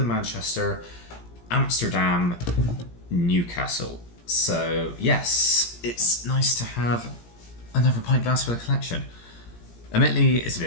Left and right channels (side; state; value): right; late; 17 ms